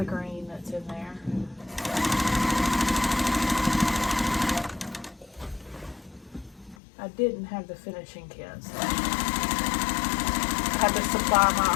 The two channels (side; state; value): right; drops out; at 6.8 s